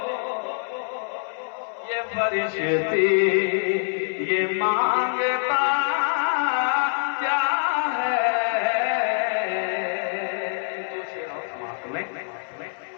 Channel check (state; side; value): silent; right; 62 dB below the other